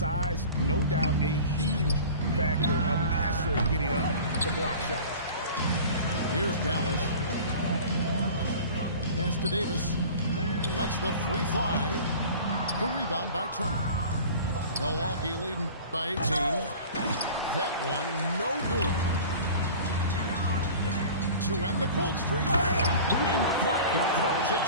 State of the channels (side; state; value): both; inverted; correlation -0.40